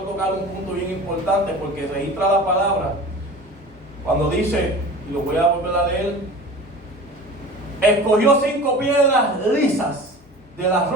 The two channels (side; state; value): both; normal; correlation 0.37